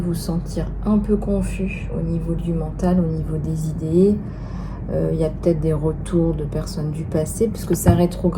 sentir un peu confus au niveau du mental, au niveau des idées. Il y a peut-être des retours de personnes du passé, puisque ça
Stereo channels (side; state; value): both; identical; correlation 1.00